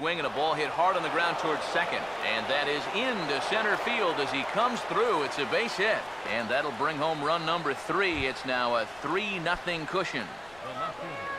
and a ball hit hard on the ground towards second. And that is into center field as he comes through. It's a base hit. And that'll bring home run number 3. It's now a 3-0 cushion. The left fielder,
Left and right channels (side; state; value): left; noise; rumble, 26 dB below the sound